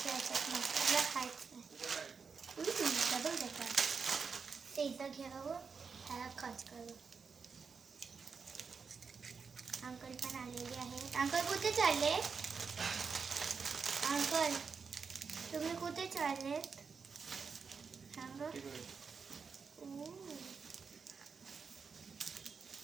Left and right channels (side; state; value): left; quieter; 5.5 dB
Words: याच्यात मसाला खायच नाही. डबल देतात ते इथं घ्यावं, ह्याला खच करू. अंकल पण आलेले आहेत. अंकल कुठे चालले? अंकल तुम्ही कुठे चाललेत? सांगा.